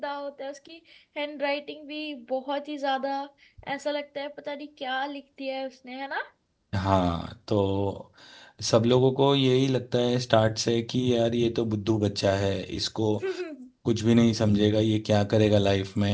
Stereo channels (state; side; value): identical; both; correlation 1.00